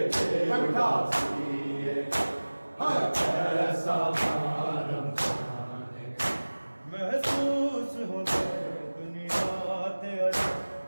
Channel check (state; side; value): inverted; both; correlation -1.00